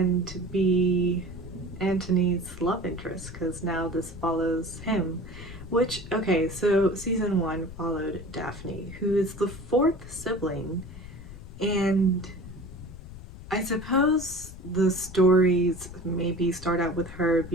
be Antony's love interest, because now this follows him. Which, okay, so season 1 followed Daphne, who is the 4th sibling, and I suppose the stories maybe start out with her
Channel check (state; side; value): noise; left; rumble, 14 dB below the sound